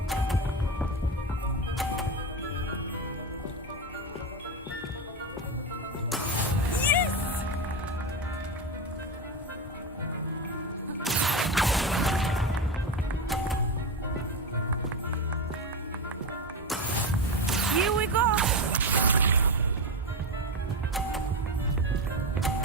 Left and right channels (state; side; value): normal; both; correlation 0.16